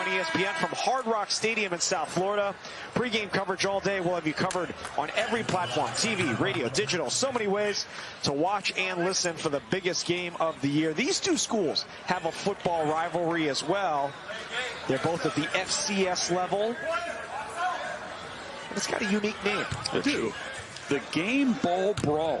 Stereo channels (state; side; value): identical; both; correlation 1.00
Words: ESPN from Hard Rock Stadium in South Florida. Pre-game coverage all day. We'll have you covered on every platform, TV, radio, digital. So many ways to watch and listen for the biggest game of the year. These two schools have a football rivalry as well. They're both at the FCS level. It's got a unique name. Dude, the Game Ball